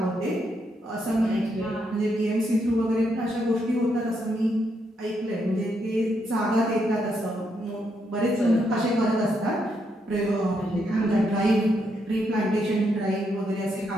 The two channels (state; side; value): normal; both; correlation 0.78